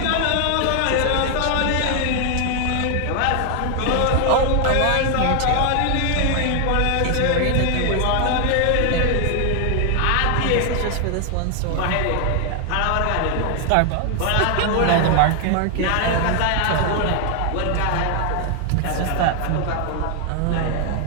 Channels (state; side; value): different; both; correlation 0.00